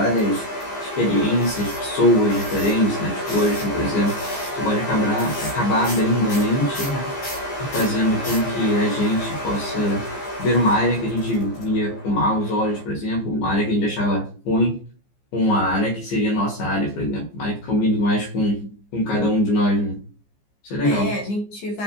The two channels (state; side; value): late; right; 15 ms